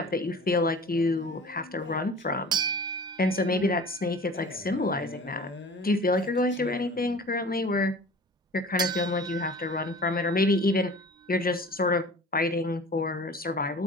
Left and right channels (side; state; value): both; normal; correlation 0.42